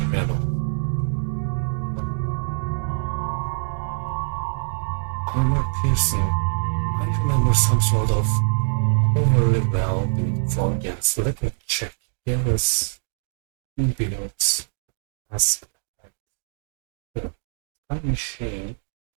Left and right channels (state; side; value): silent; left; digital silence